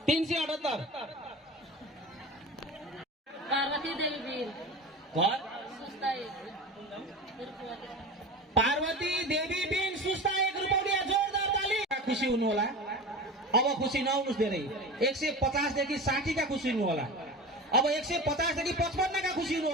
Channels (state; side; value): normal; both; correlation 0.30